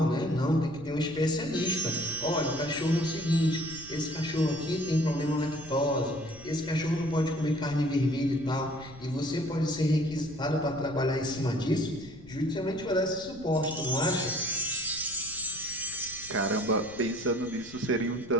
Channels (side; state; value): left; noise; rumble, 20 dB below the sound